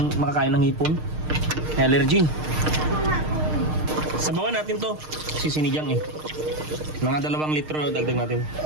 hipon. Allergy. Sabawan natin to. Sinigang eh. Mga 2 litro dagdag natin.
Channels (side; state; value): left; late; 6.5 ms